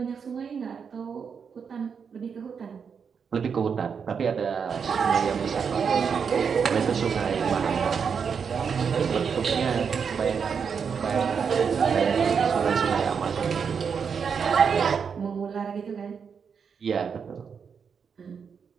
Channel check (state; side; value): quieter; left; 6.4 dB